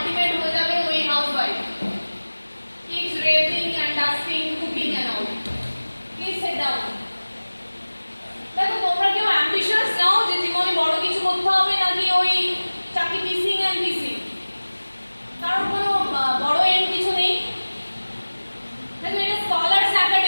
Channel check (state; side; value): inverted; both; correlation -1.00